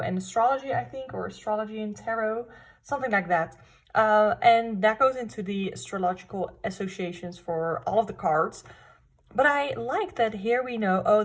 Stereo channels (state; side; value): identical; both; correlation 1.00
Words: astrology, I think, or astrology and tarot, something like that. And that goes into the astrological associations for all of the cards. But I like that here we know,